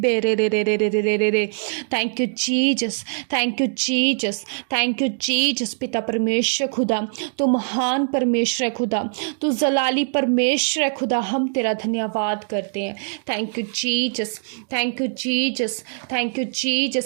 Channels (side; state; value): left; silent; digital silence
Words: रे रे रे रे रे रे रे रे। Thank you Jesus, thank you Jesus, thank you Jesus. पिता परमेश्वर खुदा, तू महान परमेश्वर है खुदा, तू जलाली परमेश्वर है खुदा, हम तेरा धन्यवाद करते हैं। Thank you Jesus, thank you Jesus, thank you